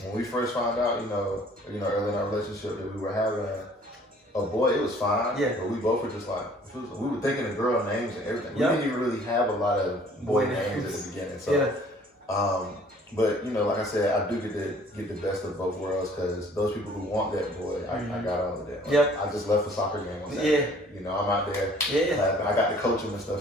When we first found out, you know, early in our relationship that we were having a boy, it was fine. Yeah. But we both were just like, we were thinking of girl names and everything. We didn't even really have a lot of boy names at the beginning. So, but you know, like I said, I do get the best of both worlds because those people who want that boy, I got on with that. Yep. I just left for soccer game on Saturday. You know, I'm out there. Yeah. I got to coach them and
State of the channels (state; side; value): normal; both; correlation 0.55